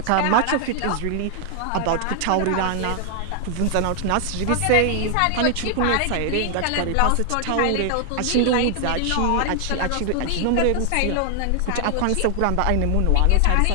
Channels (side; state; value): both; different; correlation 0.00